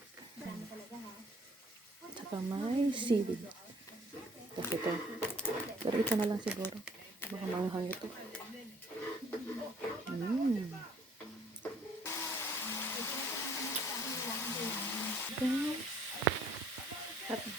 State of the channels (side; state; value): both; normal; correlation 0.58